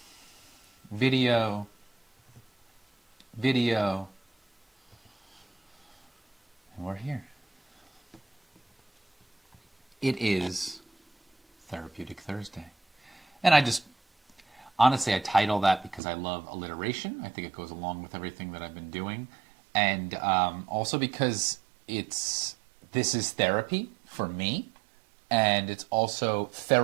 video, and we're here. It is Therapeutic Thursday. And honestly, I title that because I love alliteration. I think it goes along with everything that I've been doing. And also because this is therapy for me. And it's also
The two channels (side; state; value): left; drops out; at 16.0 s